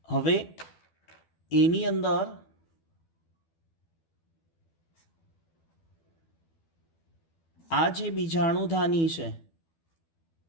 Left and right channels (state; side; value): late; right; 12 ms